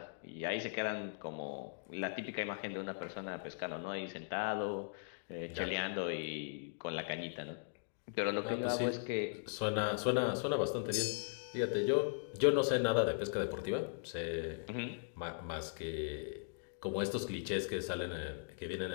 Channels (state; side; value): silent; right; digital silence